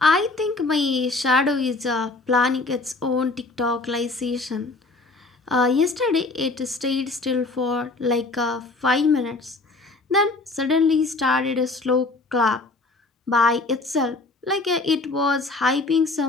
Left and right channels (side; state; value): right; quieter; 3.4 dB